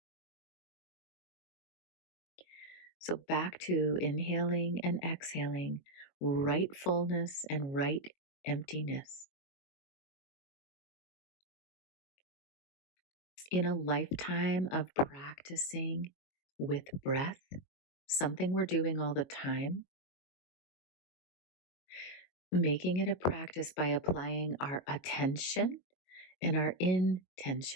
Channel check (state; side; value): late; right; 22 ms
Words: So back to inhaling and exhaling, right fullness and right emptiness. In a lifetime of practicing with breath, something we're doing all the time, making it a practice by applying our attention and our